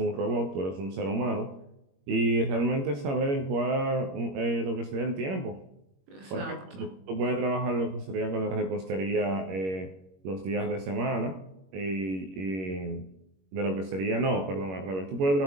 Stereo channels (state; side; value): late; left; 21 ms